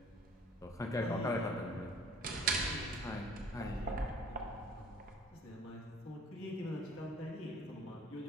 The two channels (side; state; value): both; normal; correlation 0.51